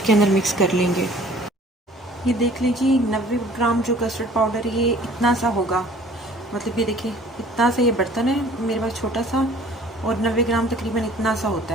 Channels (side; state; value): both; normal; correlation 0.51